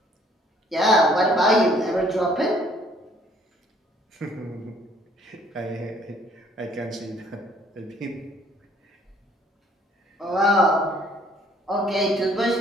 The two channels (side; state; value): both; normal; correlation 0.60